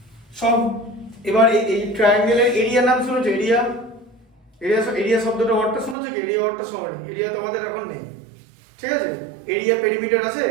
সব। এবার এই ট্রায়াঙ্গেলের এরিয়া নাম শুনেছো? এরিয়া, এরিয়া শব্দটা ওয়ার্ডটা শুনেছো কি? এরিয়া ওয়ার্ডটা সবারই, এরিয়া তোমাদের এখন নেই, ঠিক আছে, এরিয়া পেরিমিটার আছে,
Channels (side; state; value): left; drops out; at 6.0 s